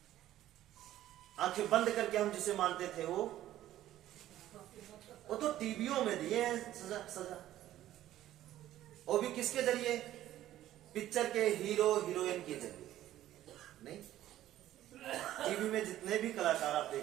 आंखें बंद करके हम जिसे मानते थे वो वो तो टीवियों में दिए हैं सजा सजा, वो भी किसके जरिए? पिक्चर के हीरो हीरोइन के जरिए। नहीं, टीवी में जितने भी कलाकार आप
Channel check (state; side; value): quieter; left; 13.4 dB